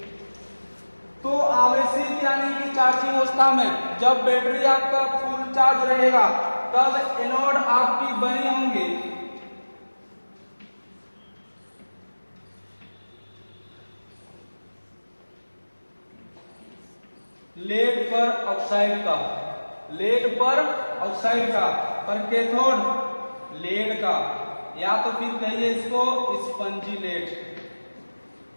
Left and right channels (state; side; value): inverted; both; correlation -1.00